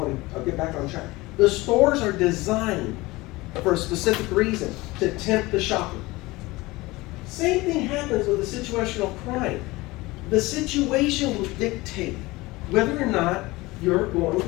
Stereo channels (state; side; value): quieter; right; 21.0 dB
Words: get back on track. The stores are designed for a specific reason, to tempt the shopper. Same thing happens with a situational crime. The situation will dictate whether or not you're going to